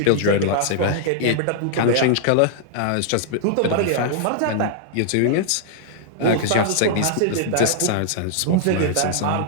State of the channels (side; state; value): both; different; correlation -0.01